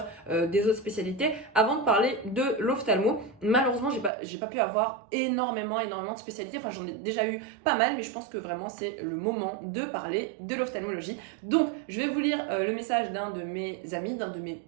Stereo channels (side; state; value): left; drops out; at 4.1 s